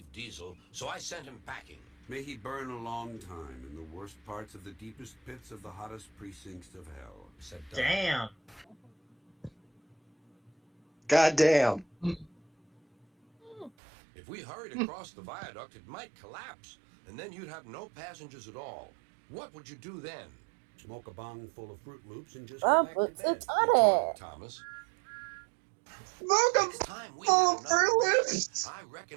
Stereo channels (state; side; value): drops out; left; at 13.7 s